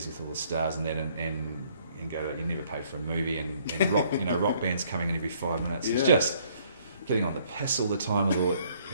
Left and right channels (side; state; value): both; inverted; correlation -0.63